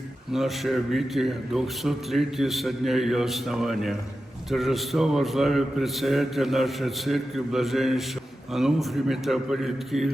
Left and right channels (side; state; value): both; normal; correlation 0.92